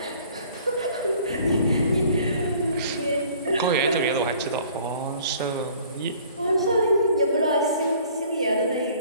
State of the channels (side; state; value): both; inverted; correlation -0.53